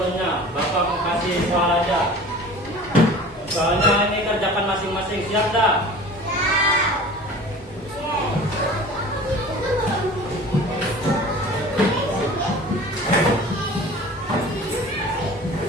Bapak mau kasih soal aja. Soalnya ini kerjakan masing-masing, siap dah?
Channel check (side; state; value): both; normal; correlation 0.41